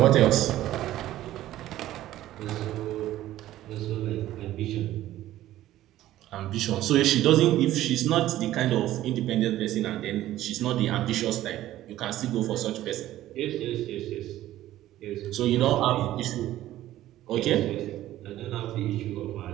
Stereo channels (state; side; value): quieter; left; 14.2 dB